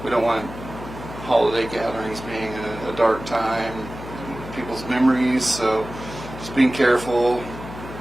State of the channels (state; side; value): noise; left; hum, 12 dB below the sound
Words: We don't want holiday gatherings being a dark time in people's memories, so just being careful.